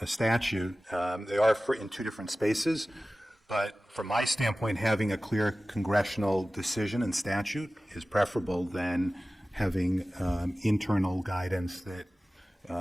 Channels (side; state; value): both; normal; correlation 0.97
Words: statute. They are in two different spaces, but from my standpoint, having a clear congressional decision and statute is preferable than having internal guidance that